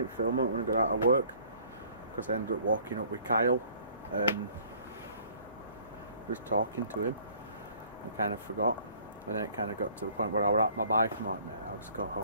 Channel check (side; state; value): both; inverted; correlation -0.56